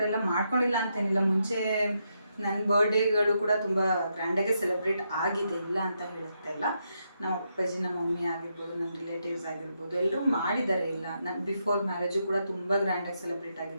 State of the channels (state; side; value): inverted; both; correlation -0.81